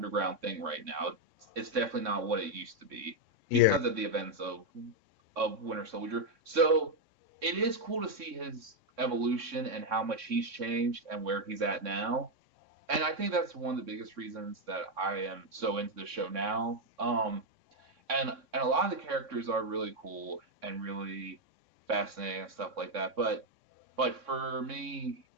thing right now. It's definitely not what it used to be Yeah, because of the events of Winter Soldier. So it is cool to see his evolution and how much he's changed and where he's at now. And I think that's one of the biggest reasons that I am so into the show now. And a lot of the characters are really cool and really fascinating and stuff like that. But for me,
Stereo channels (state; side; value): late; left; 3.6 ms